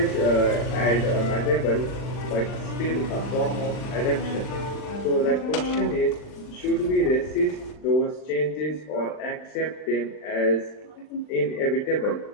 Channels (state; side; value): late; right; 39 ms